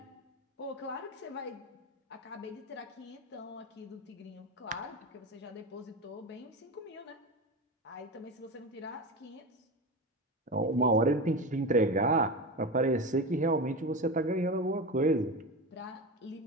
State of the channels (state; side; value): normal; both; correlation 0.23